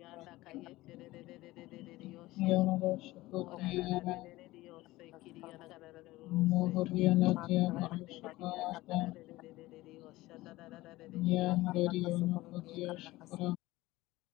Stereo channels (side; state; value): right; quieter; 18.5 dB